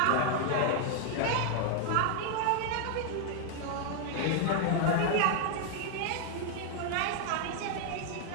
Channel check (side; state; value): both; different; correlation 0.00